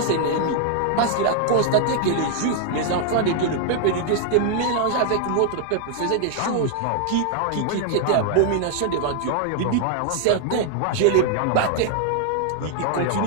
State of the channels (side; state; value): both; different; correlation 0.00